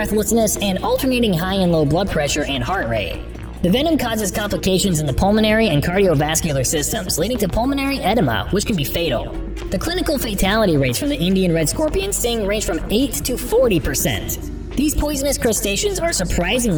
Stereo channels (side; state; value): both; identical; correlation 1.00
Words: and alternating high and low blood pressure and heart rate. The venom causes complications in the pulmonary and cardiovascular systems, leading to pulmonary edema, which can be fatal. The clinical fatality rates from the Indian red scorpion sting range from 8 to 40%. These poisonous crustaceans are